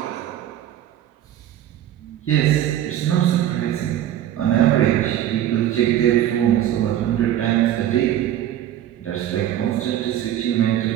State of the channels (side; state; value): left; quieter; 11.9 dB